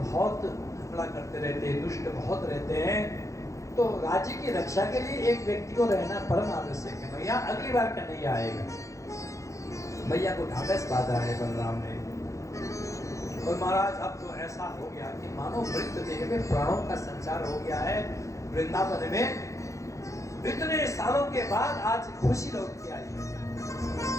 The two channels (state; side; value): late; right; 0.15 ms